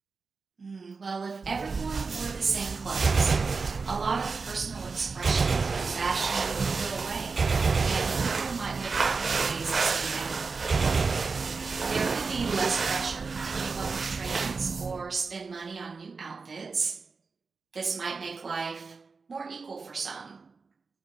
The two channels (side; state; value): left; quieter; 4.6 dB